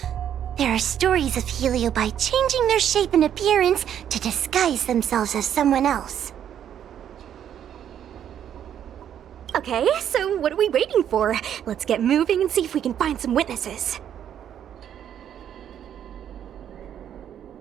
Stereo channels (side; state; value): left; quieter; 9.7 dB